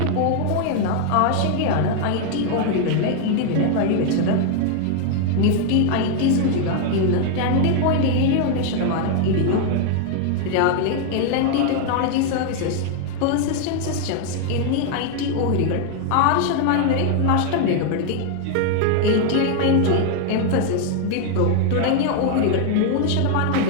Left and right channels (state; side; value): different; both; correlation 0.00